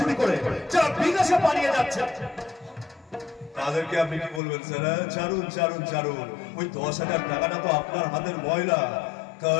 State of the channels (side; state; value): right; drops out; at 4.4 s